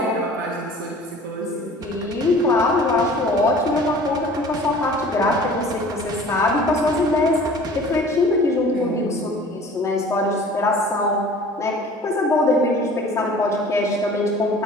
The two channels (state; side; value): normal; both; correlation 0.46